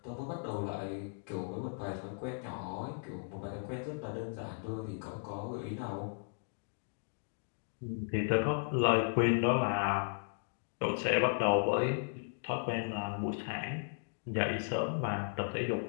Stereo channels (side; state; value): right; silent; digital silence